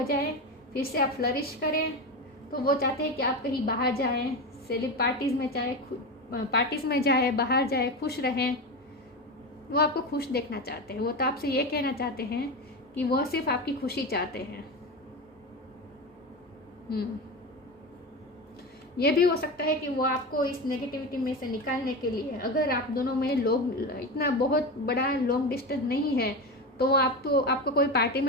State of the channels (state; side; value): normal; both; correlation 0.21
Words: जाएं, फिर से आप फ्लरिश करें। तो वो चाहते हैं कि आप कहीं बाहर जाएं, पार्टीज में जाए, बाहर जाए, खुश रहें। वो आपको खुश देखना चाहते हैं। वो तो आपसे ये कहना चाहते हैं कि वो सिर्फ आपकी खुशी चाहते हैं। ये भी हो सकता है कि वो आपको इस नेगेटिविटी में से निकालने के लिए, अगर आप दोनों में इतना बहुत बड़ा लॉन्ग डिस्टेंस नहीं है, तो वो आपको कोई पार्टी